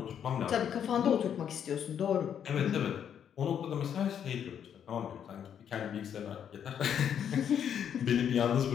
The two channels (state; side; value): quieter; right; 8.7 dB